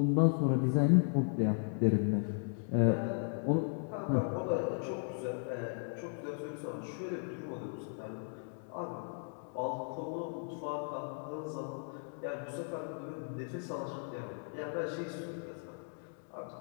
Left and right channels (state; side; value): silent; right; 54 dB below the other